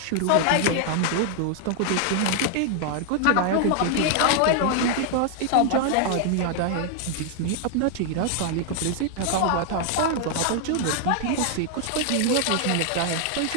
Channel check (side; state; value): both; different; correlation 0.00